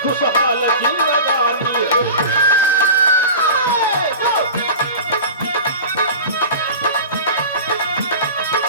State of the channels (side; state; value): both; inverted; correlation -0.33